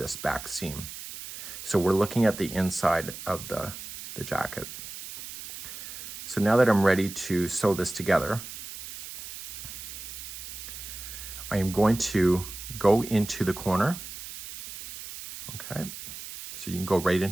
back seam. So we're looking at the inside of the jacket. So now that I'm ready to sew this together, I am going to go into the corner. Okay, so you can go right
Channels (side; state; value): right; noise; hiss, 11 dB below the sound